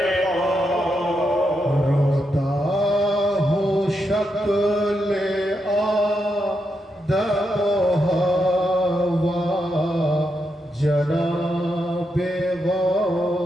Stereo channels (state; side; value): normal; both; correlation 0.83